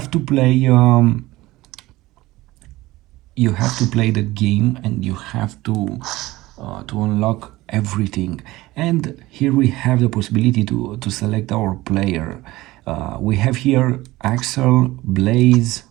to play the game, and you have to unlock everything. And here we have the possibility to select our player. We have here Axel, Blaze,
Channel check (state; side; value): quieter; left; 18.5 dB